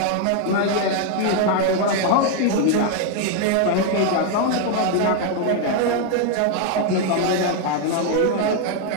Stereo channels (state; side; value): different; both; correlation 0.00